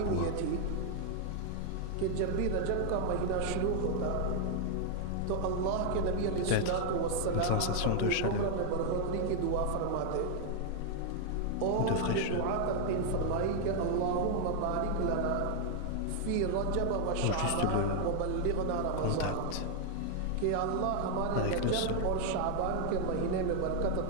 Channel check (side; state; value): both; different; correlation 0.00